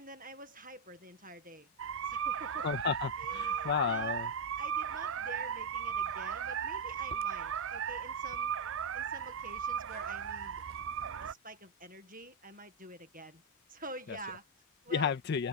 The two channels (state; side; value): normal; both; correlation 0.01